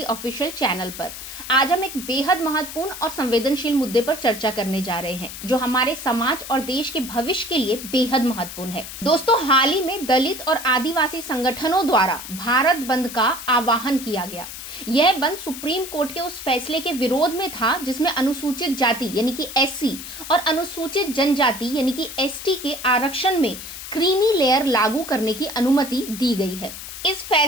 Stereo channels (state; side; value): noise; left; hiss, 11 dB below the sound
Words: ऑफिशियल चैनल पर। आज हम एक बेहद महत्वपूर्ण और संवेदनशील मुद्दे पर चर्चा करने जा रहे हैं जो हमारे समाज और देश के भविष्य के लिए बेहद महत्वपूर्ण है। दोस्तों, हाल ही में दलित और आदिवासी संगठनों द्वारा भारत बंद का आह्वान किया गया। यह बंद सुप्रीम कोर्ट के उस फैसले के विरोध में था जिसमें अनुसूचित जाति यानी कि एससी और अनुसूचित जनजाति यानी कि एसटी के आरक्षण में क्रीमी लेयर लागू करने की अनुमति दी गई है। इस